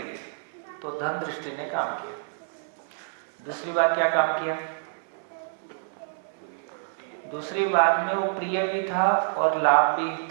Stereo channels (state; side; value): silent; left; digital silence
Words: ली, तो धन दृष्टि ने काम किया। दूसरी बार क्या काम किया? दूसरी बार में वो प्रिय भी था और लाभ भी